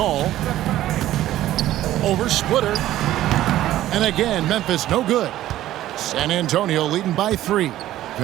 Over Splitter. And again, Memphis no good. San Antonio leading by 3.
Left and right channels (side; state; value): left; quieter; 13.9 dB